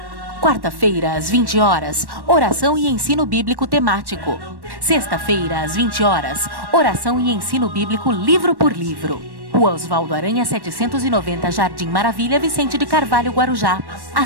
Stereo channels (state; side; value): late; left; 1.1 ms